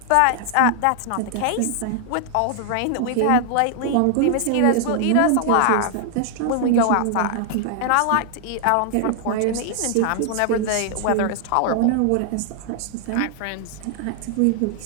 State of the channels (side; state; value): both; different; correlation 0.00